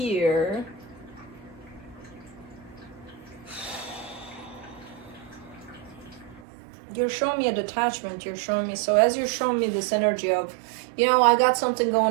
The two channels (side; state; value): left; drops out; at 6.4 s